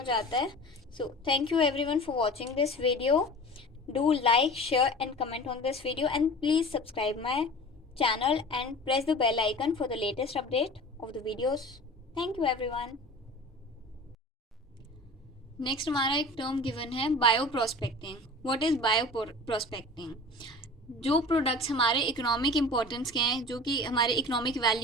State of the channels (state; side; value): normal; both; correlation 0.39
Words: जाता है. So thank you everyone for watching this video. Do like, share and comment on this video and please subscribe my channel and press the bell icon for the latest update of the videos. Thank you everyone. Next हमारा एक term given है, bioprospecting. What is bioprospecting. जो products हमारे economic importance के हैं, जो कि हमारे इकोनॉमिक